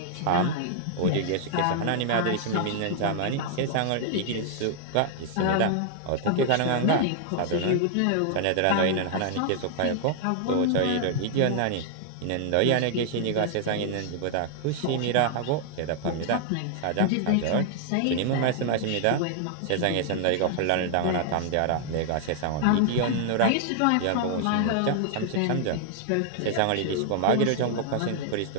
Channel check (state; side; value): different; both; correlation -0.01